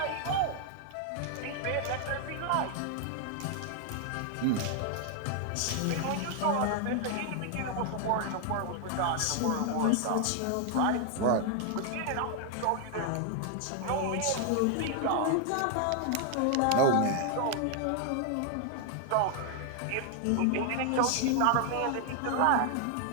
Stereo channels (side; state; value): both; different; correlation 0.00